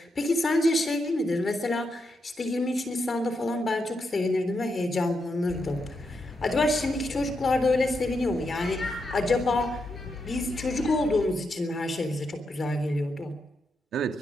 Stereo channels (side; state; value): both; normal; correlation 0.83